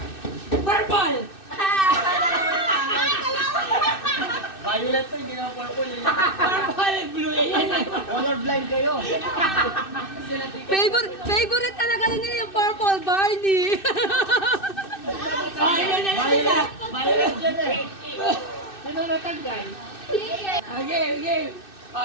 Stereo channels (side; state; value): right; late; 2.6 ms